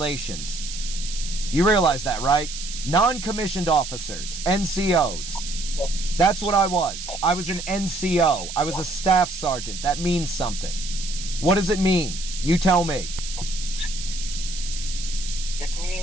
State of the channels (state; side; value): noise; right; hiss, 9 dB below the sound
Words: You realize that, right? Non-commissioned officers, NCOs. That's what I was. I was an NCO. I was a staff sergeant. That means something. What does it mean? You tell me. It